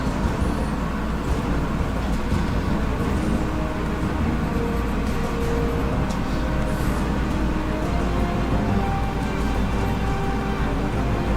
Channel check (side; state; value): both; identical; correlation 1.00